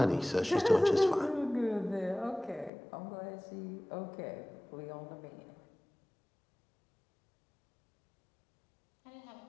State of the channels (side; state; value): right; drops out; at 2.7 s